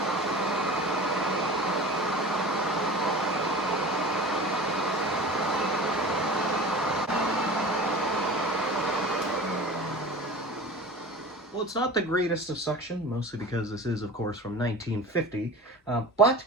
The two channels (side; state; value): both; normal; correlation 0.37